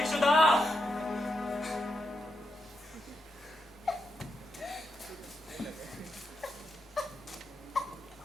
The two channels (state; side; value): normal; both; correlation 0.84